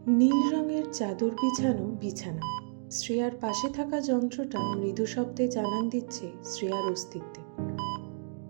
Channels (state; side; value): silent; left; digital silence